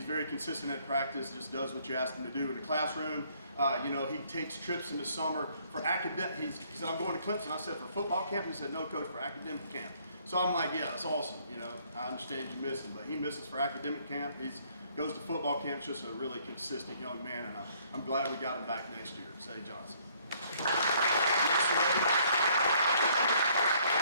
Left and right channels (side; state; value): both; inverted; correlation -0.64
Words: very consistent at practice, just does what you ask him to do in the classroom. He takes trips in the summer for academic. He said, I'm going to Clemson. I said, for football camp? He said, no, coach, for academic camp. So I'm like, yeah, that's awesome. I understand you missing, but he misses for academic camp. He goes to football camp, just a really consistent young man, and I'm glad we got him back next year. Say Johnson.